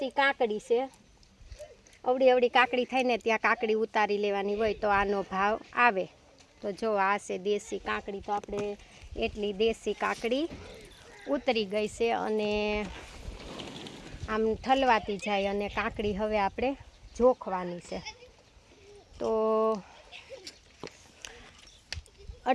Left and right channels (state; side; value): identical; both; correlation 1.00